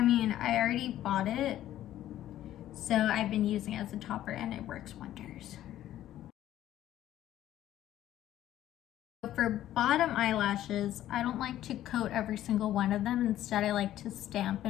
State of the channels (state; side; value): quieter; right; 12.9 dB